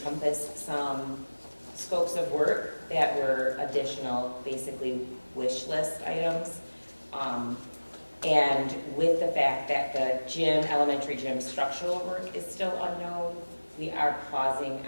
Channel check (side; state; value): both; inverted; correlation -1.00